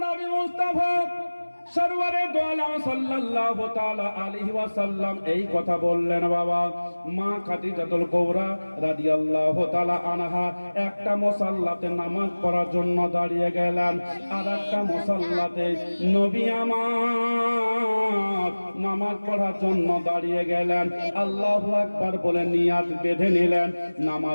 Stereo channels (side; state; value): both; inverted; correlation -1.00